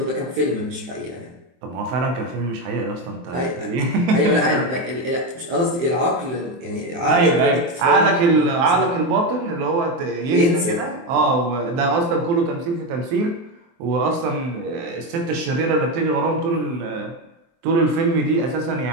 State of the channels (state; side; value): late; left; 23 ms